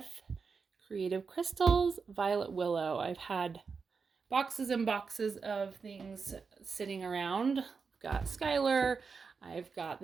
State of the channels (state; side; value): quieter; left; 5.2 dB